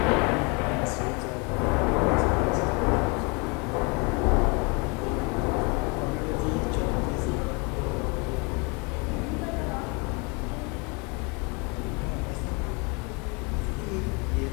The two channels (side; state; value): right; quieter; 31.0 dB